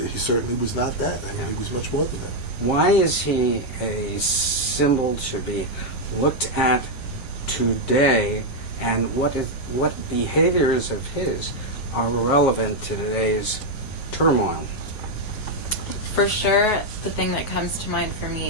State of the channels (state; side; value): late; right; 9.0 ms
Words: he certainly was not that. I mean, he was much more than that. Why is he a symbol to be looked at today, and what behaviors of his are relevant to today's turmoil? For sure, the thing that comes to mind for